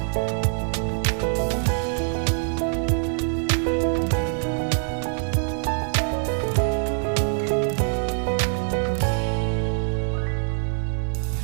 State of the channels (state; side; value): silent; left; digital silence